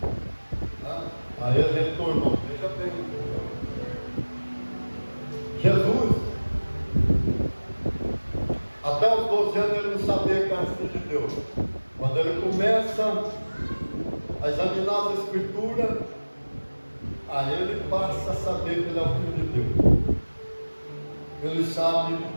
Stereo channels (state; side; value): inverted; both; correlation -1.00